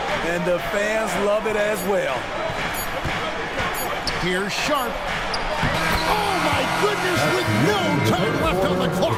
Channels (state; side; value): identical; both; correlation 1.00